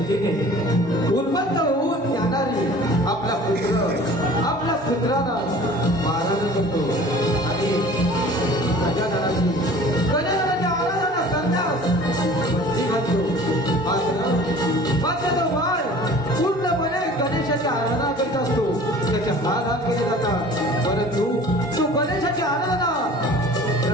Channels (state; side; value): normal; both; correlation 0.45